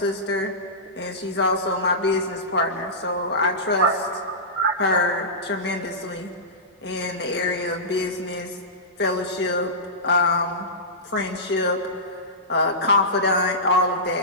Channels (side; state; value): both; normal; correlation -0.18